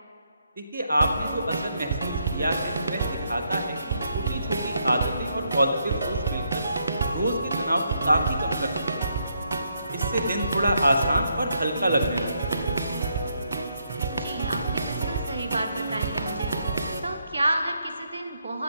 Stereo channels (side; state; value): both; inverted; correlation -0.76